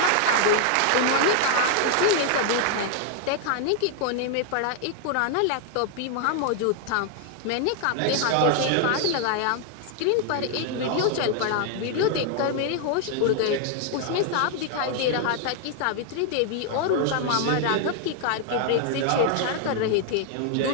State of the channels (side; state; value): both; different; correlation 0.00